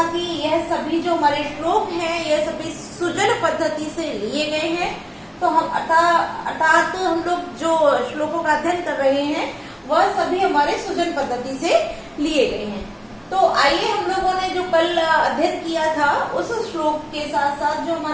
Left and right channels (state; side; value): identical; both; correlation 1.00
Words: कि यह सभी जो हमारे श्लोक हैं, यह सभी सुजन पद्धति से लिए गए हैं। तो हम अर्थात हम लोग जो श्लोकों का अध्ययन कर रहे हैं वह सभी हमारे सुजन पद्धति से लिए गए हैं। तो आइए हम लोगों ने जो कल अध्ययन किया था उस श्लोक के साथ साथ जो